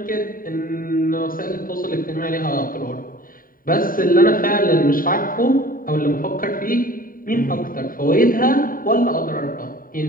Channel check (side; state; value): right; late; 0.41 ms